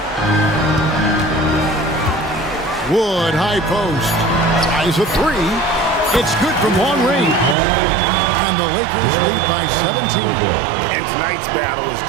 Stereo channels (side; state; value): left; drops out; at 7.6 s